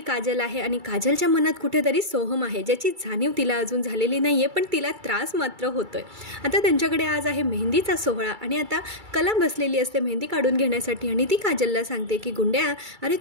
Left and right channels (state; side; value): late; left; 2.3 ms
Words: आहे आणि काजलच्या मनात कुठेतरी सोहम आहे, ज्याची जाणीव तिला अजून झालेली नाहीये, पण तिला त्रास मात्र होतोय. आता त्यांच्याकडे आज आहे मेहंदीचा सोहळा आणि आता कला बसलेली असते मेहंदी काढून घेण्यासाठी आणि ती काजलला सांगते की गुंड्या, अरे